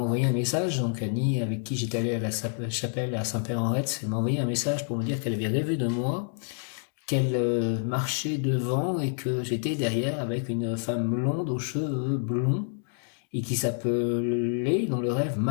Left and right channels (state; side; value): silent; right; digital silence